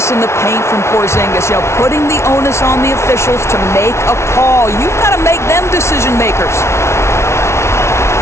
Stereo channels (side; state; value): right; late; 0.13 ms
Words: in the paint from Porzingis, putting the onus on the officials to make a call. You've got to make them decision makers.